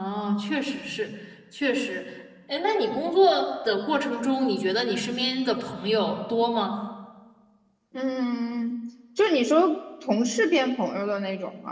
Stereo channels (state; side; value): identical; both; correlation 1.00